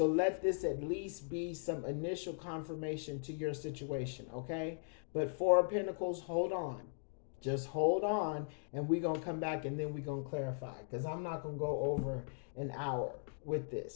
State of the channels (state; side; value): silent; right; digital silence